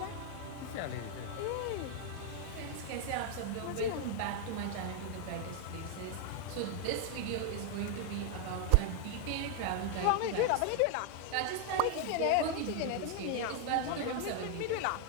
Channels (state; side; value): different; both; correlation 0.00